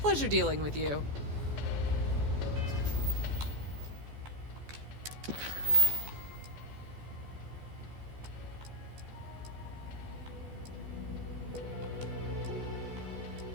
Pleasure dealing with you.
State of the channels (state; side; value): late; left; 14 ms